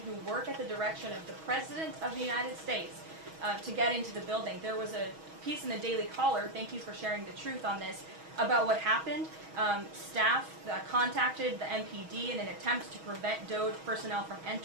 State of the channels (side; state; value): left; late; 6.3 ms